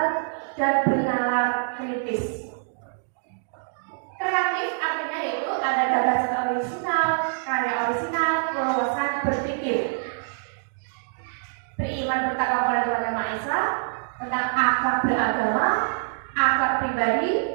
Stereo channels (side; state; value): left; silent; digital silence